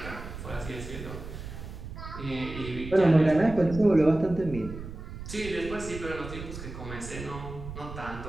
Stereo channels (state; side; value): noise; right; rumble, 10 dB below the sound